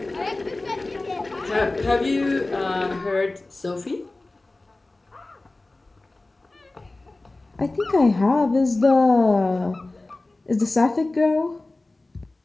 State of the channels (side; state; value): right; quieter; 3.0 dB